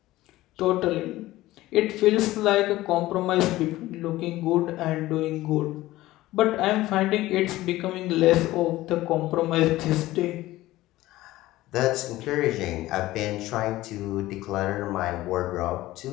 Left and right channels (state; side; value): quieter; right; 16.9 dB